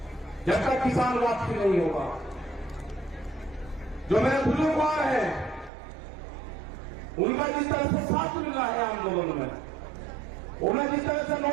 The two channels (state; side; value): drops out; left; at 5.7 s